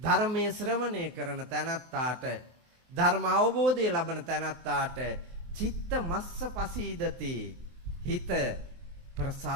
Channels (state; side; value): late; left; 23 ms